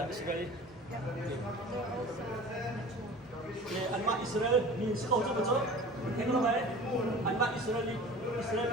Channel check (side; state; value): both; normal; correlation 0.40